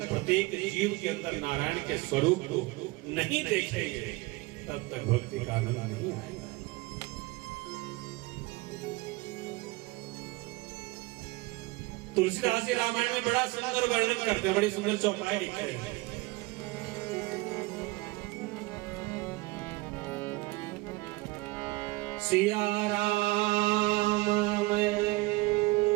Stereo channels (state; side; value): quieter; left; 22.4 dB